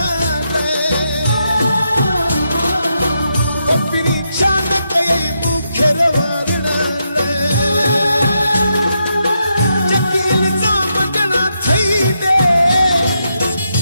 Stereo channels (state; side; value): inverted; both; correlation -0.82